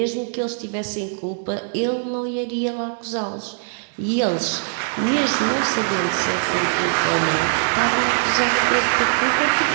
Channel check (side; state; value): left; silent; digital silence